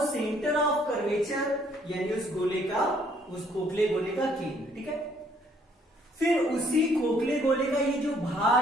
सेंटर ऑफ कर्वेचर यानी उस गोले का, उस खोखले गोले का केंद्र, ठीक है। फिर उसी खोखले गोले का ये जो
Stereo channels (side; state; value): both; normal; correlation 0.64